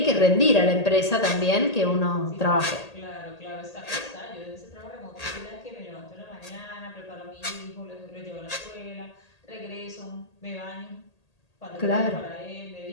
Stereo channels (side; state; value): right; late; 1.8 ms